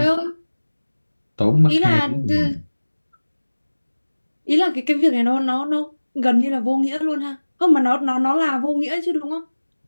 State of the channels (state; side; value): inverted; both; correlation -1.00